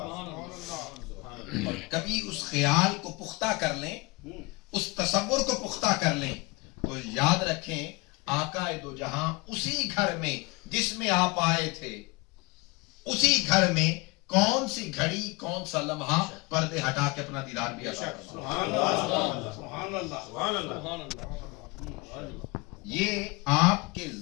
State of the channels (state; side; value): quieter; right; 25.7 dB